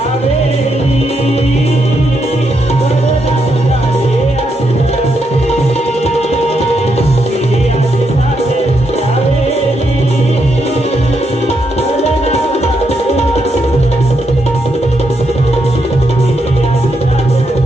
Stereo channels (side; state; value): both; normal; correlation 0.80